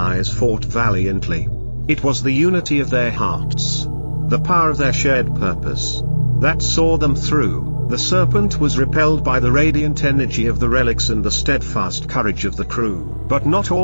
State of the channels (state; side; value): inverted; both; correlation -1.00